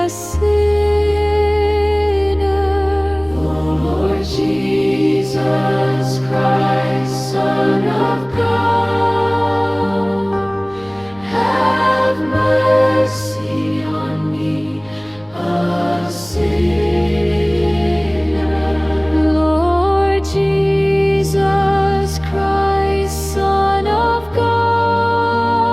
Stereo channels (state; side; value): noise; right; rumble, 28 dB below the sound